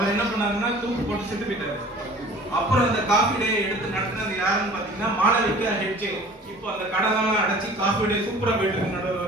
என்ன பண்ணாருன்னா தூக்கு போட்டு செத்து போயிட்டாரு. அப்புறம் அந்த காஃபி டே எடுத்து நடத்தினது யாருன்னு பாத்தீங்கன்னா மாளவிகா ஹெட்ஜ். இப்போ அந்த கடனெல்லாம் அடைச்சி காஃபி டே சூப்பரா போயிட்டு இருக்கு.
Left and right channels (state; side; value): normal; both; correlation 0.46